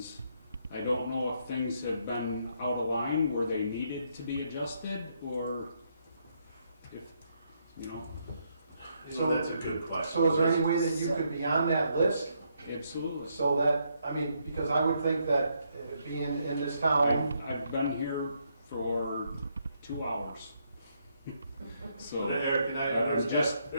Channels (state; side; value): inverted; both; correlation -0.75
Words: I don't know if things have been out of line where they needed to be adjusted, or if, you know, So that's a good question. So is there any way that you could be on that list? absolutely. So that, I mean, because I would think that being in this town, I've been here for 2 hours. So So, Eric, can I, was just